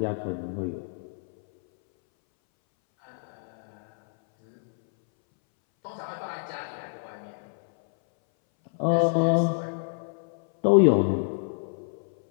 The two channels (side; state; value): right; silent; 60 dB below the other